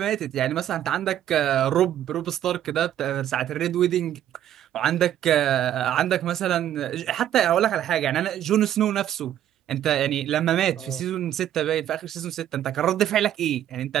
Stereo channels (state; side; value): quieter; left; 11.3 dB